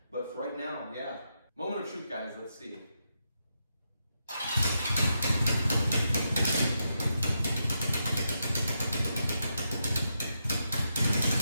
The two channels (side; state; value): both; inverted; correlation -0.84